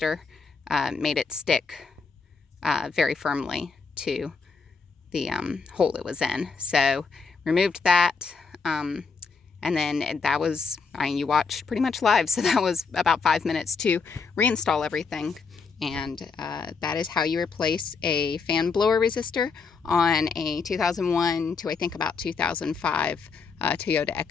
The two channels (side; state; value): right; quieter; 5.0 dB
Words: made it stick very firmly to the hole it was in. So removed that, and then that was, you watched pretty much live, so that was about 5 minutes to reinstall everything. And that is how you replace a fan blower resistor on a 2001 to I think about 2005 Toyota